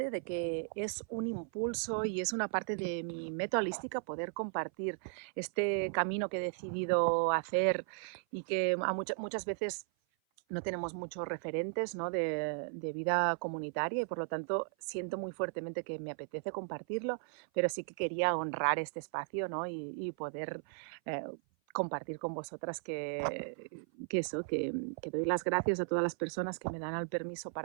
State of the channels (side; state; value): left; silent; 54 dB below the other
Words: de que es un impulso y es una parte de mi meta holística poder compartir este camino que he decidido hacer y que muchas veces no tenemos muchos referentes, ¿no? De vida comunitaria y por lo tanto siento muy fuertemente que me apetece compartirlo, pero sí que quería honrar este espacio, ¿no? Y poder eh, compartir con vosotras que doy las gracias a todas las personas que me dan el permiso